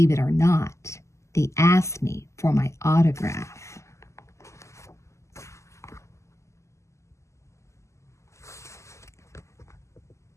it or not, they asked me for my autograph.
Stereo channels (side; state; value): right; late; 0.14 ms